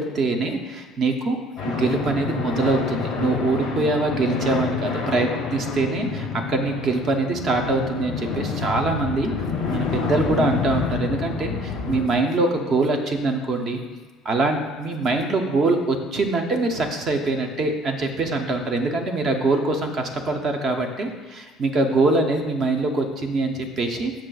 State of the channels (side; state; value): both; normal; correlation 0.57